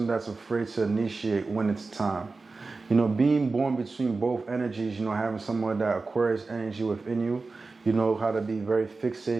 that's afraid to initiate when it's time. You know, being born between both energies, you know, having someone that Aquarius energy within you, you know how to be very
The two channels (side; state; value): left; quieter; 3.9 dB